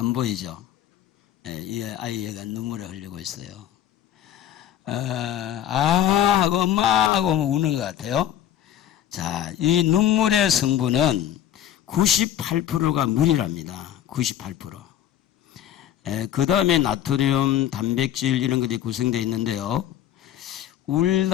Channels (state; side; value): quieter; right; 11.0 dB